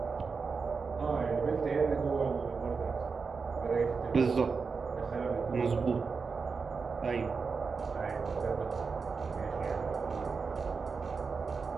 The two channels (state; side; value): quieter; left; 5.0 dB